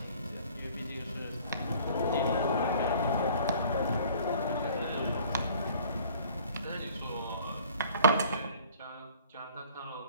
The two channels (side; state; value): both; inverted; correlation -0.52